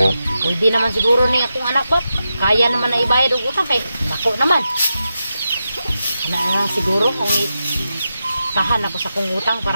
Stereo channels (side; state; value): both; inverted; correlation -0.89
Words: Pwede naman siguro ni akong anak ba kaya naman na ibayad og utang kay dako naman. Ana siguro kung tahan ako sa kong utang